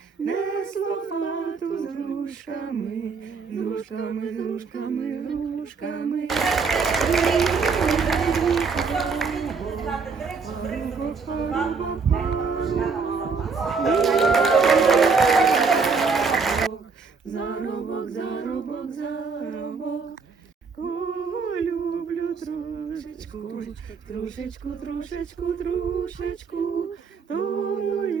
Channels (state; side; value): quieter; left; 5.0 dB